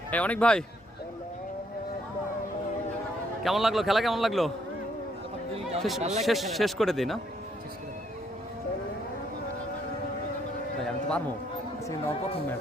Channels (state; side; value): normal; both; correlation 0.70